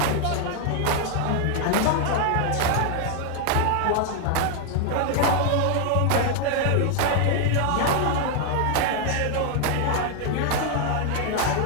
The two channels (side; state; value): both; different; correlation 0.00